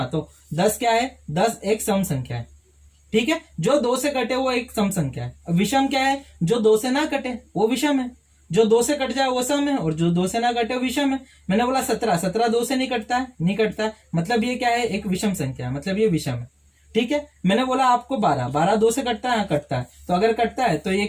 तो 10 क्या है, 10 एक सम संख्या है, ठीक है। जो 2 से कटे वो एक सम संख्या है। विषम क्या है, जो 2 से ना कटे वो विषम है, जो 2 से कट जाए वो सम है, और जो 2 से ना कटे वो विषम है। मैंने बोला 17 2 से नहीं कटता है, मतलब ये क्या है, एक विषम संख्या है, मतलब ये विषम है, ठीक है। मैंने बोला आपको 12 2 से कटता है, हाँ कटता है, तो अगर कटता है तो ये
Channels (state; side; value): identical; both; correlation 1.00